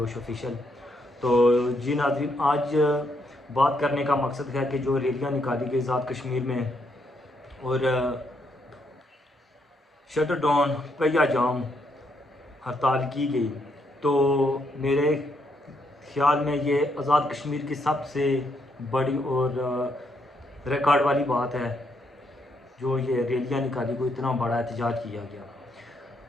ऑफिशियल। तो जी नाज़रीन, आज बात करने का मकसद है कि जो रैलियाँ निकाली गई आज़ाद कश्मीर में और शटर डाउन पहिया जाम हड़ताल की गई, तो मेरे ख्याल में ये आज़ाद कश्मीर की सबसे बड़ी और रिकॉर्ड वाली बात है जो ये रैलियाँ निकाली को इतना बड़ा एहतजाज किया गया।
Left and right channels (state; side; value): normal; both; correlation 0.76